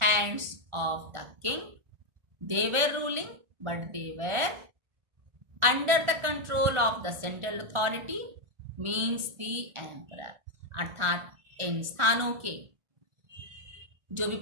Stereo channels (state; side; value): late; left; 1.4 ms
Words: of the king. They were ruling, but they were under the control of the central authority, means the emperor. अर्थात इन स्थानों के जो भी